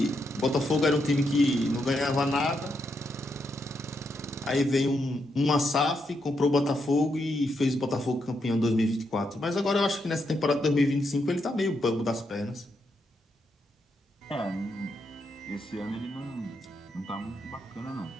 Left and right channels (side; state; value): both; normal; correlation 0.81